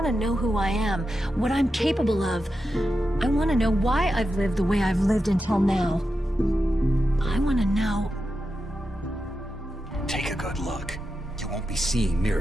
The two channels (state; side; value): normal; both; correlation 0.89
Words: to know who I am, what I'm capable of. I want to know why I've lived the way I've lived until now. I want to know... Take a good look. You won't be seeing